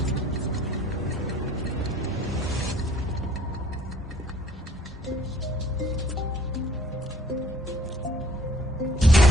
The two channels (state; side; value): normal; both; correlation 0.58